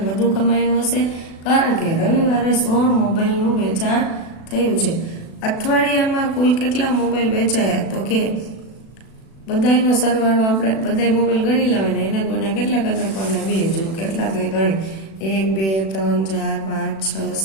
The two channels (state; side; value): late; right; 36 ms